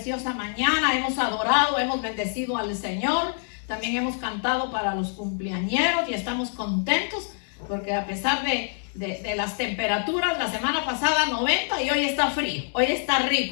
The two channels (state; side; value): silent; right; 61 dB below the other